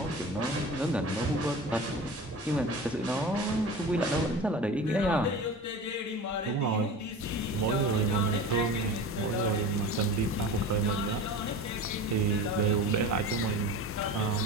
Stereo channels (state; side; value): normal; both; correlation 0.34